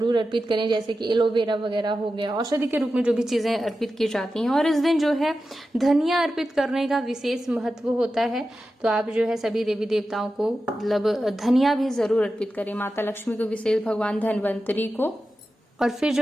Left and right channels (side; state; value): both; normal; correlation 0.92